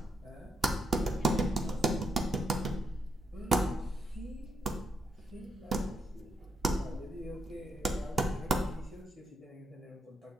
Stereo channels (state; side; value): normal; both; correlation 0.79